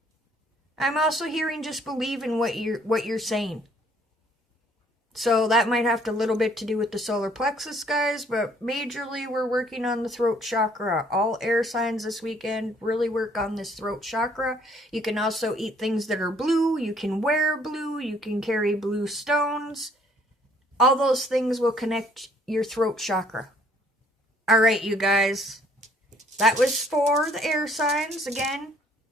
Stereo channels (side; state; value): both; normal; correlation 0.62